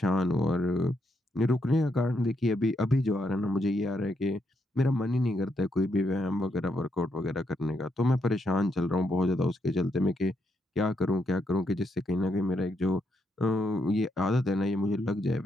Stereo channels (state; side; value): normal; both; correlation 0.79